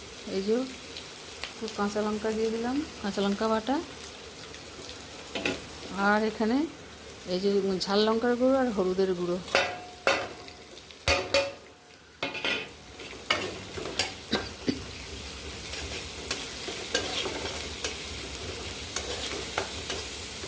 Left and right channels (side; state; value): both; identical; correlation 1.00